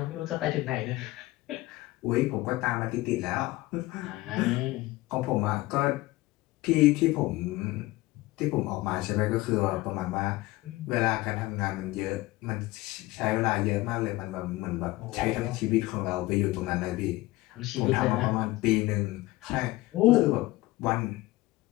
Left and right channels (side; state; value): right; quieter; 19.2 dB